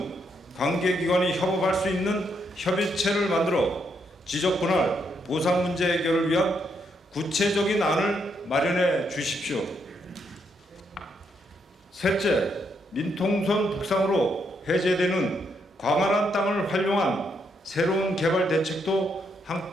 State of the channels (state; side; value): normal; both; correlation 0.77